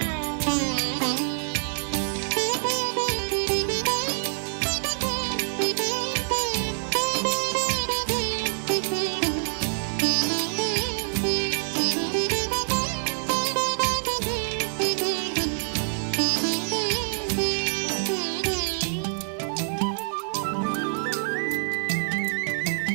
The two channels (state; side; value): silent; left; 61 dB below the other